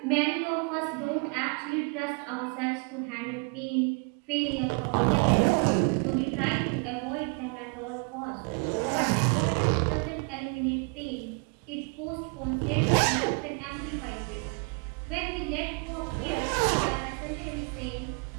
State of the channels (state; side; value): quieter; left; 36.1 dB